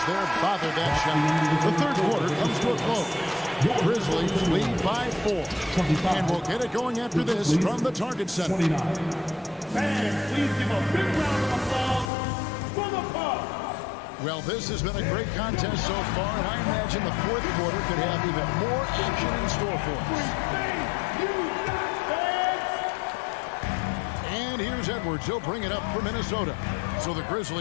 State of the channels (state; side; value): drops out; right; at 12.1 s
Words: there bothered that shot. The third quarter comes to a close. Grizzlies lead by 4. And we'll get it going after this from the Target Center. 29. Fans, please give a big round of applause for the Bucks. Well, this has been a great contest so far, and I imagine the fourth quarter could have even more action in store for us. And here's Edwards. He'll bring it up for Minnesota. So the